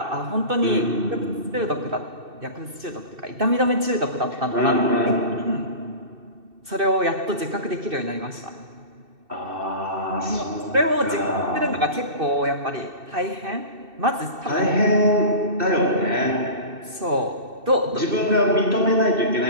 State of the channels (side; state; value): left; late; 2.6 ms